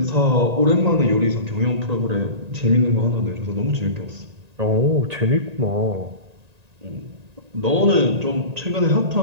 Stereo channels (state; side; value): late; left; 1.9 ms